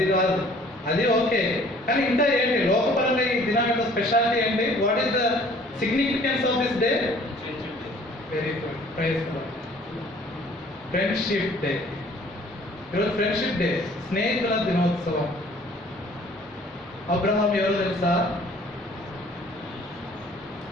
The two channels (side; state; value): both; normal; correlation 0.54